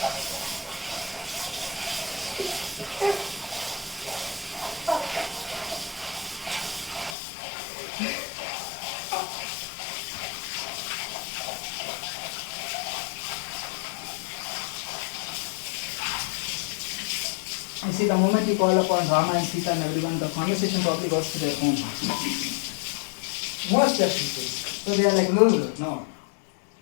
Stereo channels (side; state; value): right; drops out; at 7.2 s